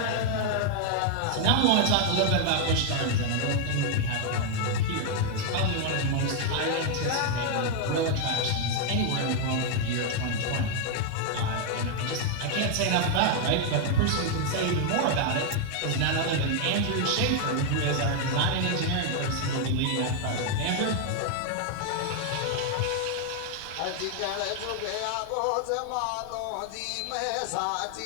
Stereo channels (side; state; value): both; different; correlation 0.00